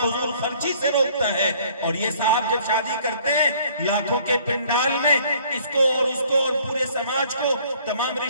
خرچی سے روکتا ہے، اور یہ صاحب جب شادی کرتے ہیں لاکھوں کے پنڈال میں اس کو اور اس کو اور پورے سماج کو، تمام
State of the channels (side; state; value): both; inverted; correlation -0.57